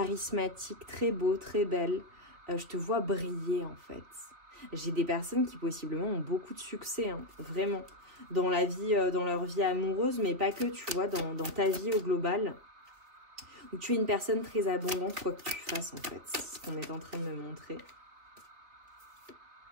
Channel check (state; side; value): late; left; 3.5 ms